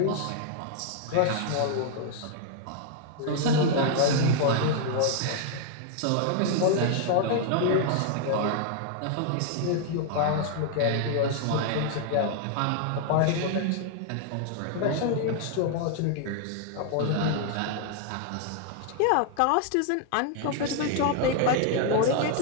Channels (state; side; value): different; both; correlation 0.00